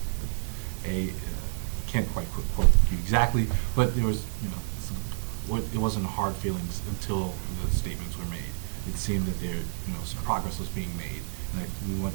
can't quite quote you exactly, but there was, it wasn't hard feelings until the statements were made. It seemed that there, some progress was being made, and we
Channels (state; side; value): silent; left; digital silence